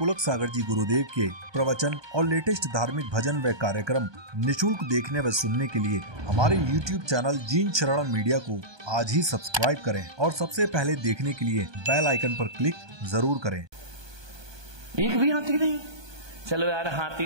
सागर जी गुरुदेव के प्रवचन और लेटेस्ट धार्मिक भजन व कार्यक्रम निशुल्क देखने व सुनने के लिए हमारे YouTube चैनल जीन शरण मीडिया को आज ही सब्सक्राइब करें और सबसे पहले देखने के लिए बेल आइकन पर क्लिक जरूर करें। एक भी हाथी नहीं? चलो यार, हाथी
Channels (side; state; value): left; late; 1.2 ms